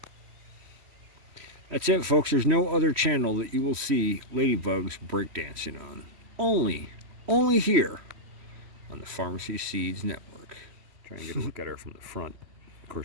That's it, folks. There's no other channel that you will see ladybugs breakdancing on. Only here on the Pharmacy Seeds Network. Try and get a look at her from the front. Of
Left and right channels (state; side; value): late; left; 3.1 ms